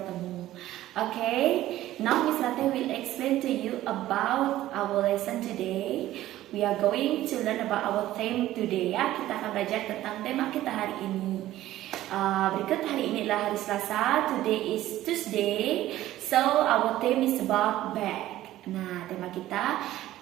Okay, now Miss Rati will explain to you about our lesson today. We are going to learn about our theme today ya. Kita akan belajar tentang tema kita hari ini. Berikut hari ini adalah hari Selasa. Today is Tuesday. So our theme is about bag. Nah, tema kita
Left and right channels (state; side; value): quieter; left; 14.5 dB